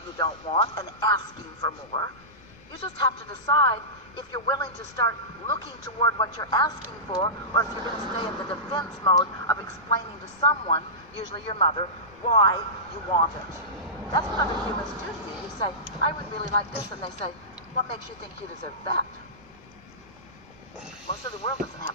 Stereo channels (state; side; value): noise; right; rumble, 29 dB below the sound